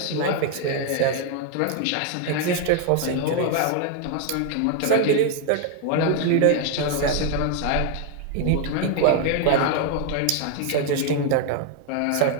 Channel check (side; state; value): both; different; correlation 0.00